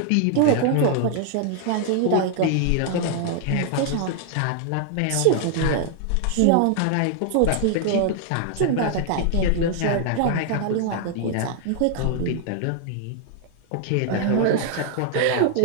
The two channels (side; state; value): both; different; correlation 0.00